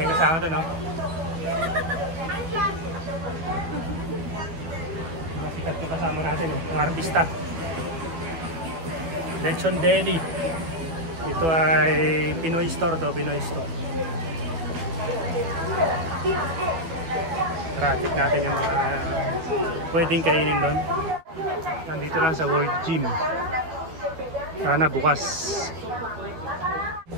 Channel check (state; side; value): late; left; 12 ms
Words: kasama doon, no? Masikat yung kasama natin, yung artista. Lechon Deli. Ito ay Pinoy store to, Pinoy store. Tara-check natin yung mga pwedeng kainin doon. Nandito lang sa World Gym. Sana bukas.